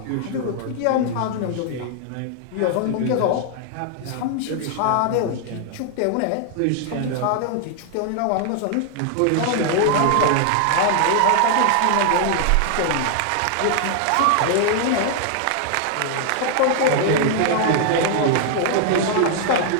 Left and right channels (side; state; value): both; different; correlation 0.00